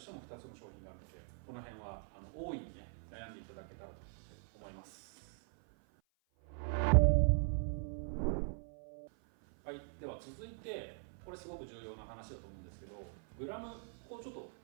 ても2つの商品があるので、この辺は大いにね悩んでいただけたらと思います。続いてこれすごく重要な話だと思うんですけど、グラムをちょっと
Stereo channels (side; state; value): left; silent; 50 dB below the other